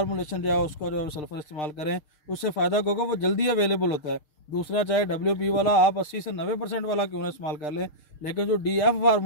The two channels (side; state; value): right; late; 6.6 ms